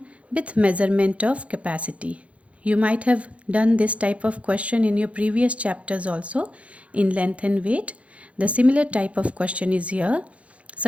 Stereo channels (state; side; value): late; left; 0.063 ms